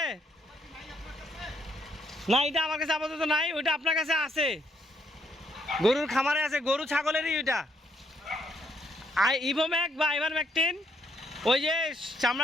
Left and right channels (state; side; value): normal; both; correlation 0.72